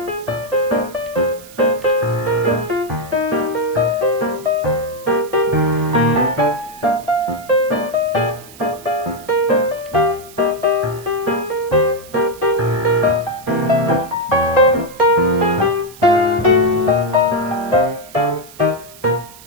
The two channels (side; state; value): right; noise; hiss, 20 dB below the sound